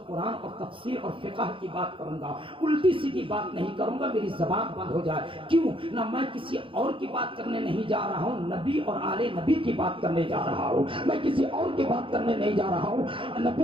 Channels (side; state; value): left; late; 0.25 ms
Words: قرآن اور تفسیر اور فقہ کی بات کروں گا، الٹی سیدھی بات نہیں کروں گا، میری زبان بند ہو جائے. کیوں نہ میں کسی اور کی بات کرنے نہیں جا رہا ہوں، نبی اور آل نبی کی بات کرنے جا رہا ہوں. میں کسی اور کی بات کرنے نہیں جا رہا ہوں،